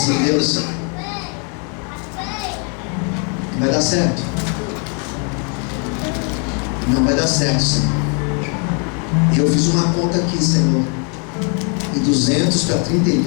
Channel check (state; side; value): quieter; right; 38.4 dB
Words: Deus, vai dar certo. Não vai dar certo, Senhor. E eu fiz uma conta aqui, Senhor. E 200 para